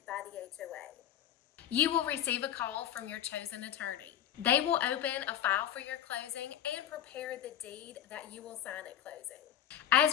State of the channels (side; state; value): right; quieter; 10.9 dB